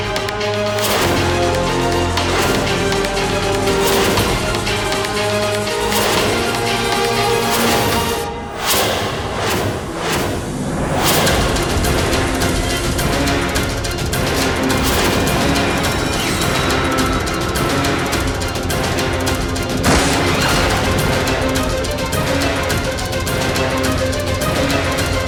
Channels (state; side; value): identical; both; correlation 1.00